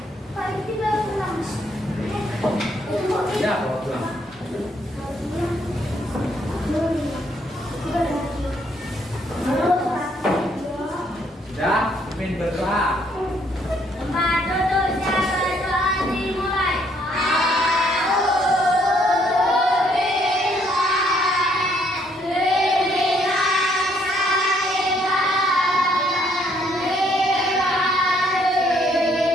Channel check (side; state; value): both; normal; correlation 0.68